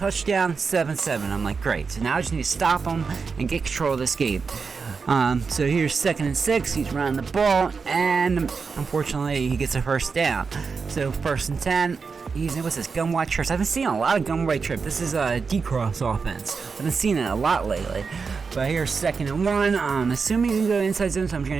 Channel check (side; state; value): left; quieter; 5.1 dB